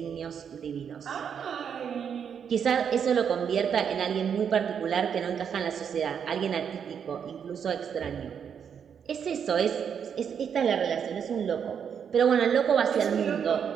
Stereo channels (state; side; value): quieter; left; 7.6 dB